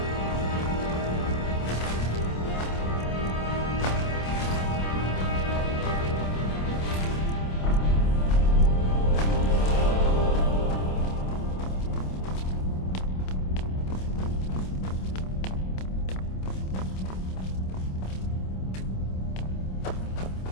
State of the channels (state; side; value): late; right; 27 ms